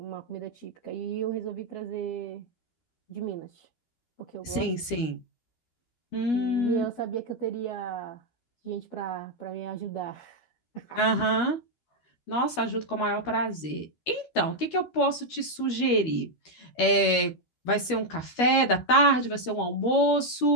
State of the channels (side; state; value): right; late; 12 ms